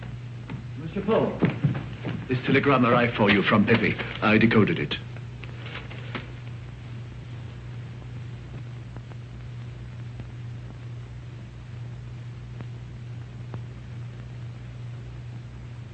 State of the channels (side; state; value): both; identical; correlation 1.00